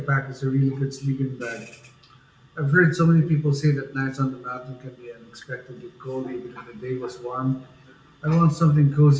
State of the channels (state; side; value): identical; both; correlation 1.00